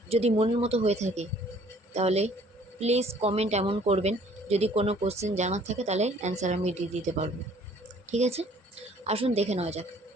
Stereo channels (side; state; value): both; normal; correlation 0.57